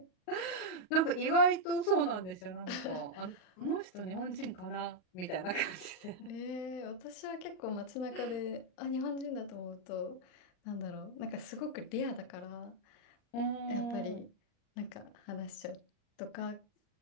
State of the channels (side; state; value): right; late; 38 ms